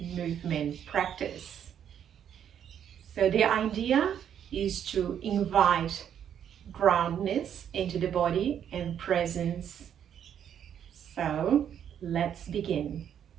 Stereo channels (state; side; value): quieter; left; 9.1 dB